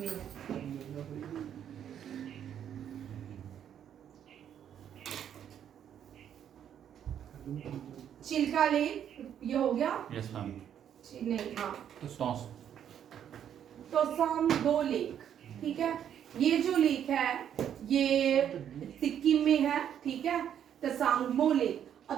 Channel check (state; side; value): quieter; left; 9.4 dB